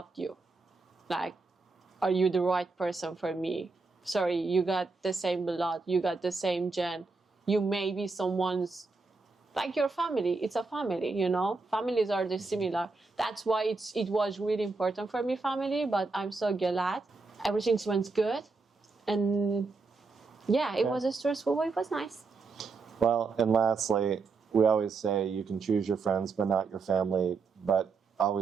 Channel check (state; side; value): quieter; left; 4.1 dB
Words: you. Like, are you the right person for me? Sorry, you got the same blood, you got the same gen. You may be someone's, like your family. It's a family, you know? Families are similar. That's why it was really important for me, family, but I'm so glad. Everything went good. And yeah, it was stressful, but it was nice. Well, and lastly, we always say you can choose your friends, but not your family. But